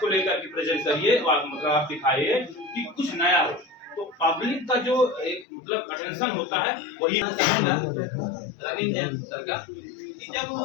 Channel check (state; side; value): drops out; right; at 5.5 s